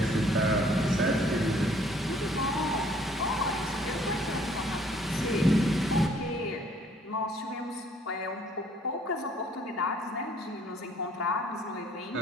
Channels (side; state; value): both; normal; correlation 0.60